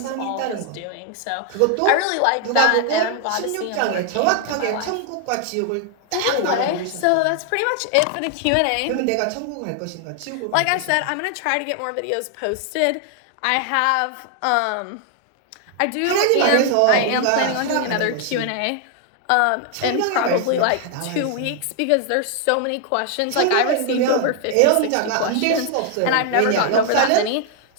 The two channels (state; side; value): different; both; correlation 0.00